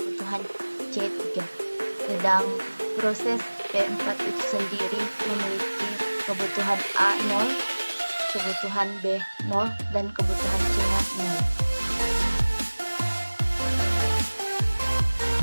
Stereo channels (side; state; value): both; inverted; correlation -1.00